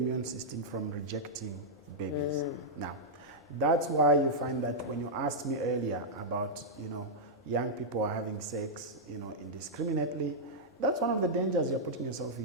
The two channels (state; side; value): normal; both; correlation -0.07